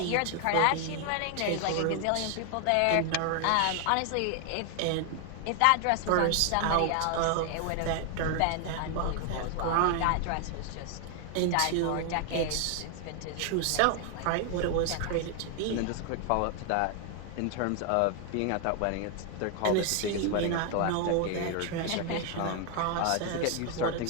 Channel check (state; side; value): different; both; correlation 0.00